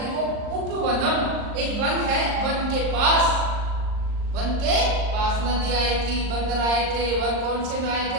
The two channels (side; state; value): left; late; 39 ms